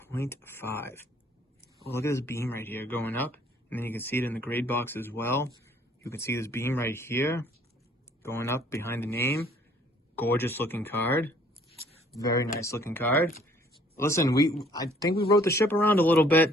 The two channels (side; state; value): both; normal; correlation 0.59